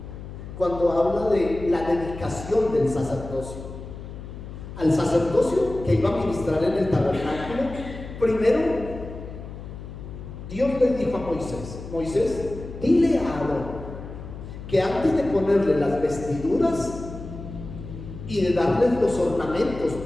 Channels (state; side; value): noise; left; hum, 11 dB below the sound